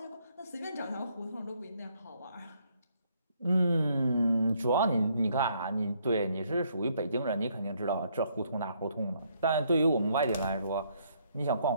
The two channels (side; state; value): both; inverted; correlation -0.70